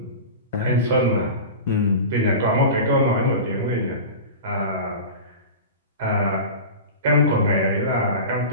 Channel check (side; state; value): both; inverted; correlation -0.30